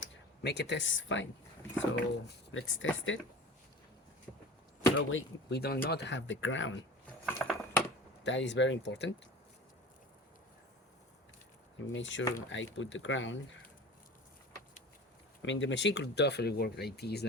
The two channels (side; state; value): both; normal; correlation 0.37